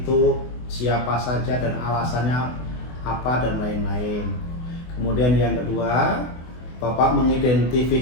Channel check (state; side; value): late; right; 24 ms